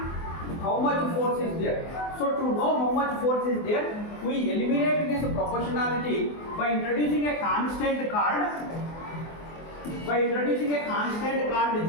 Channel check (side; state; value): right; late; 24 ms